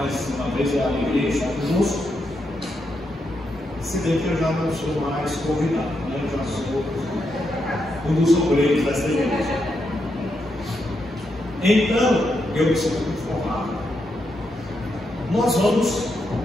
uma vez é a alegria estar conosco, se bem que eu já não sou mais convidado, né? Eu já sou um dos obreiros dessa igreja. Então, eu me sinto informado. Nós vamos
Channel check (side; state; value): both; normal; correlation 0.82